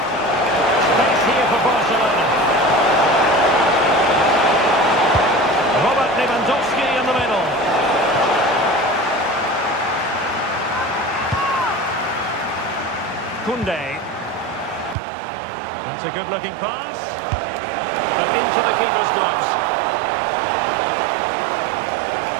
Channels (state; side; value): drops out; left; at 15.0 s